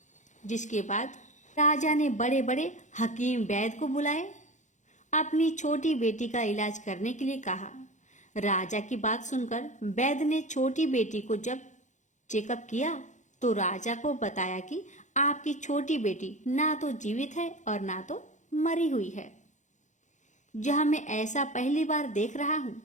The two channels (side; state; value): right; late; 0.35 ms